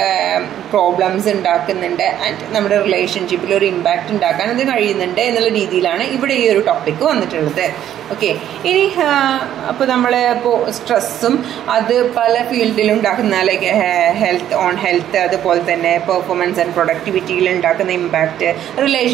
പ്രോബ്ലംസ് ഉണ്ടാക്കുന്നുണ്ട്. ആൻഡ് നമ്മുടെ റിലേഷൻഷിപ്പിൽ ഒരു ഇമ്പാക്റ്റ് ഉണ്ടാക്കാൻ അത് കഴിയുന്നുണ്ട് എന്നുള്ള രീതിയിലാണ് ഇവിടെ ഈ ഒരു ടോപ്പിക്ക് വന്നിട്ടുള്ളത്. ഓക്കെ, ഇനി അപ്പോൾ നമ്മൾ ഇപ്പോൾ സ്ട്രെസ്സും അത് പല ഫീൽഡിലും ഉണ്ടാക്കുന്ന, ലൈക്ക് ഹെൽത്ത്, അതുപോലെ തന്നെ പെർഫോമൻസ് ആൻഡ് പ്രൊഡക്ടിവിറ്റിയിൽ ഉണ്ടാക്കുന്ന ഇമ്പാക്റ്റ്,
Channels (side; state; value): left; quieter; 11.1 dB